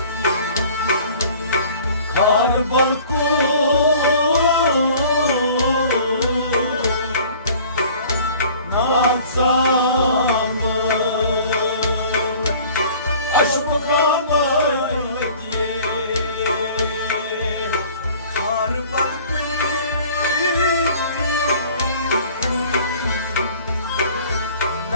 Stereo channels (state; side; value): inverted; both; correlation -0.49